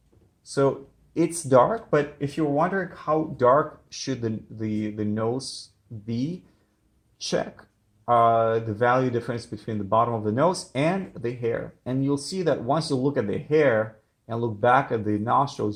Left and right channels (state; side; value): identical; both; correlation 1.00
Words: So it's dark, but if you're wondering how dark should the nose be, check the value difference between the bottom of the nose and the hair. And you'll see that once you look at the hair and look back at the